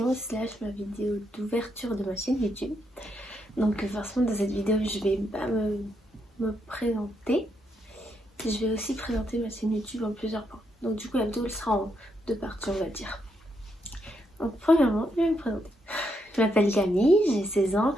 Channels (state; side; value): normal; both; correlation 0.79